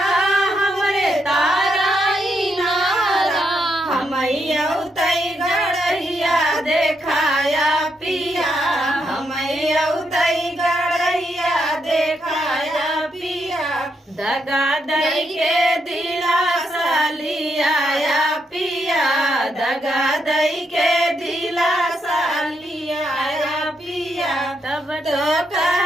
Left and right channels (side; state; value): both; normal; correlation 0.79